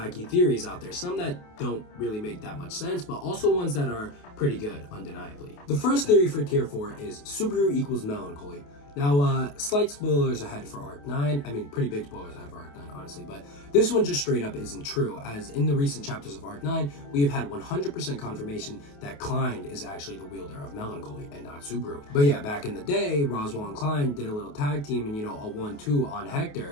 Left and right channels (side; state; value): right; late; 28 ms